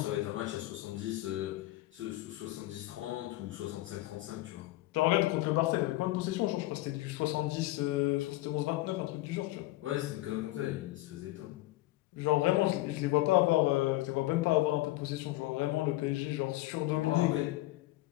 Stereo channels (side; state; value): right; quieter; 17.7 dB